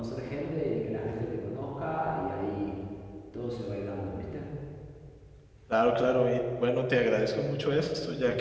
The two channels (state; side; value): identical; both; correlation 1.00